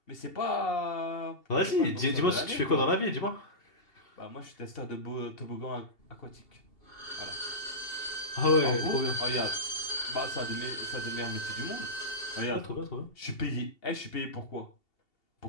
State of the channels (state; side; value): late; right; 2.7 ms